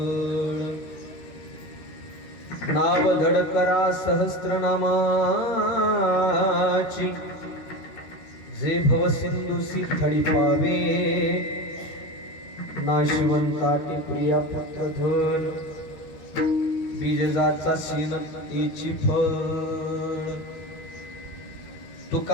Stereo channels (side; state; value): right; late; 13 ms